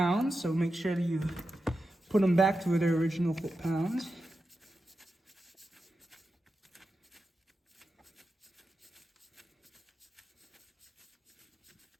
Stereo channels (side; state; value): both; normal; correlation 0.90